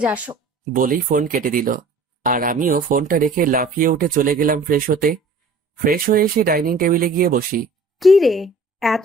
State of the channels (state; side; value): quieter; left; 3.4 dB